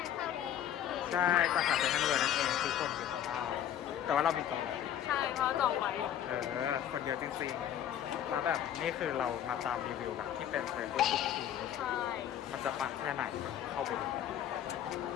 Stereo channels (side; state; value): right; quieter; 10.5 dB